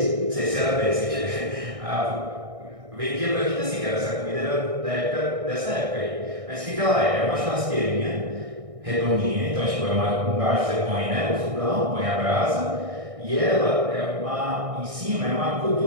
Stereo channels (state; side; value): late; left; 1.6 ms